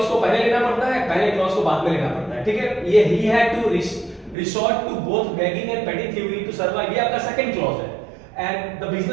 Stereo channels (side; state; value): left; drops out; at 4.4 s